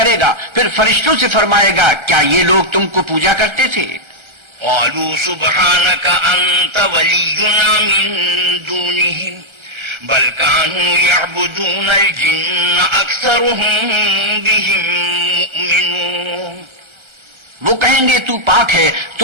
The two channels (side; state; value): left; late; 1.3 ms